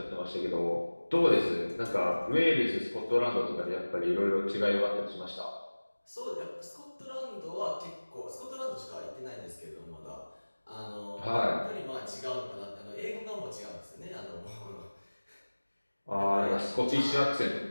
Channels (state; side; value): inverted; both; correlation -1.00